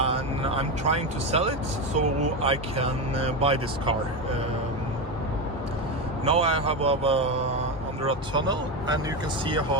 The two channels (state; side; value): normal; both; correlation 0.15